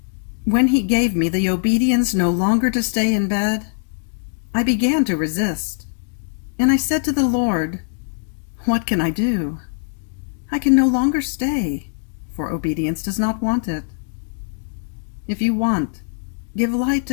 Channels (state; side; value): silent; right; digital silence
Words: When He gave me the obedience no longer to stay in bed, I began to resist, and I said to the Lord, "What can I do? I can no longer stay, for obedience does not want it. If you want, give light